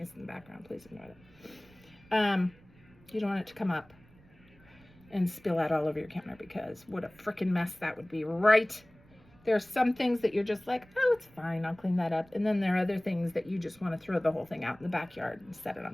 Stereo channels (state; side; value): noise; right; rumble, 27 dB below the sound